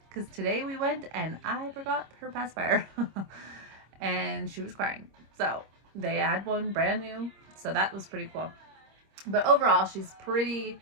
Because today we went and I forgot her pacifier and she was crying. So they had one brand new. So that was pretty cool. But overall, she's pretty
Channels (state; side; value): late; left; 26 ms